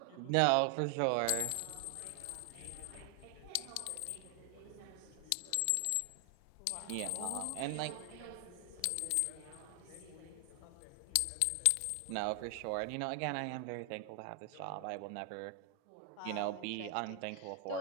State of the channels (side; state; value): both; different; correlation 0.00